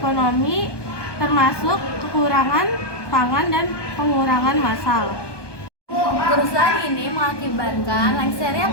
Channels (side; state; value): right; late; 1.2 ms